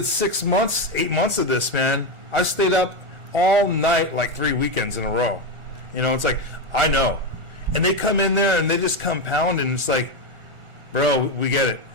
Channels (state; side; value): late; left; 1.4 ms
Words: 6 months, 8 months of this, man. I stayed up all night like 3 weekends in a row. It's like, I know. And they come in there and they just compound and it's like, bro, we get it.